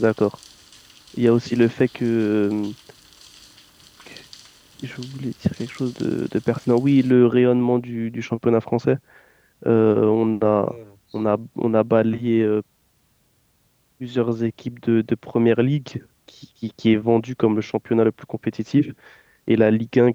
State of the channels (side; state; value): both; identical; correlation 1.00